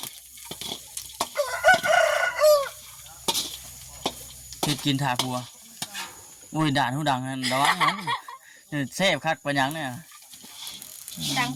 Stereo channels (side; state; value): both; identical; correlation 1.00